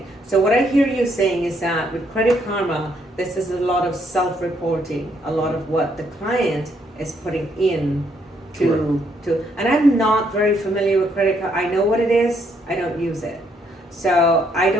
So what I hear you saying is that with Credit Karma, this is a lot of self-reporting, a lot of what the client is putting in and I'm not very familiar with credit card. I know what it is, I don't use it. So I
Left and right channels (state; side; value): normal; both; correlation 0.72